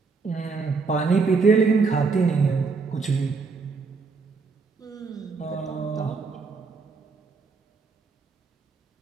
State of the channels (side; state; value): left; quieter; 4.6 dB